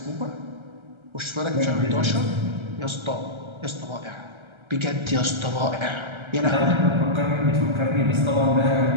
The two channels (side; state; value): left; late; 1.3 ms